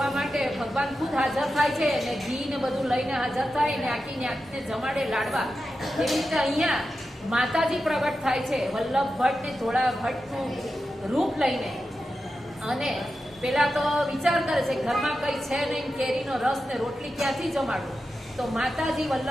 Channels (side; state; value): both; normal; correlation 0.90